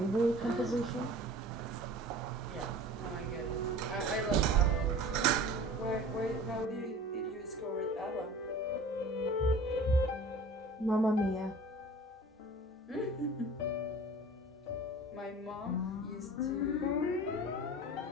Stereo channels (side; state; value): both; normal; correlation 0.42